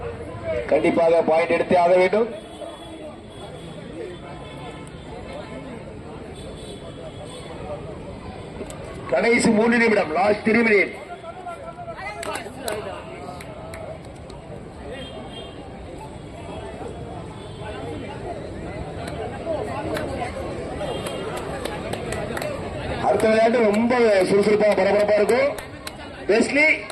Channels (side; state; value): both; identical; correlation 1.00